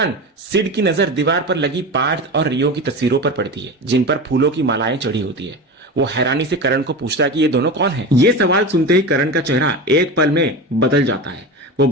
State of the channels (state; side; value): normal; both; correlation 0.26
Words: सिड की नजर दीवार पर लगी पार्थ और रियो की तस्वीरों पर पड़ती है, जिन पर फूलों की मालाएं चढ़ी होती है। वो हैरानी से करण को पूछता है कि ये दोनों कौन है। ये सवाल सुनते ही करण का चेहरा एक पल में बदल जाता है। वो